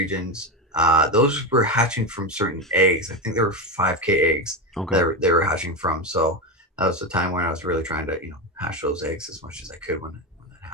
Those were hatching from certain eggs. I think there were 5K eggs Okay. that they were hatching from. So that was the time when I was really trying to hatch those eggs as much as I could when that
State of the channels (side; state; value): both; normal; correlation 0.15